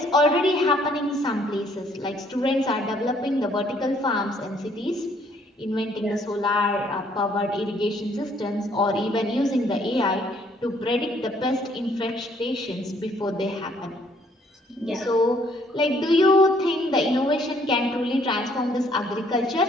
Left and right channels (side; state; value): both; normal; correlation 0.64